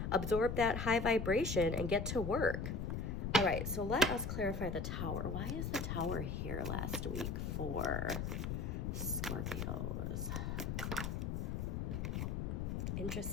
absorb that high vibration, and get to work. All right, so let us clarify the Tower. Why is the Tower here last week for Scorpios?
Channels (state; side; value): noise; left; rumble, 2 dB below the sound